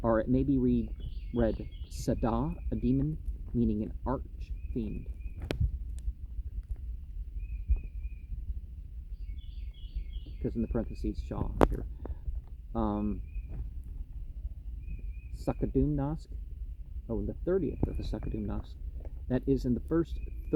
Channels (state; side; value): identical; both; correlation 1.00